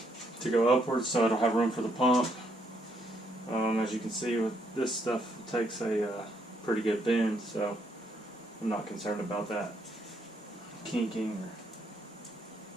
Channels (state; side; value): normal; both; correlation 0.73